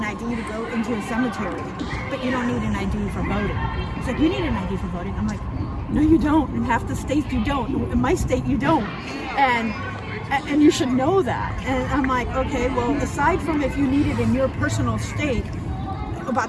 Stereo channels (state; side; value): identical; both; correlation 1.00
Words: ID to go into a cemetery, but you don't need an ID for voting? He's like, you need an ID for voting. I'm like, no, you don't. In half the states, you don't. In my state, you don't. And you should know that. And I'm like, okay, well, aside from if you need it in your personal state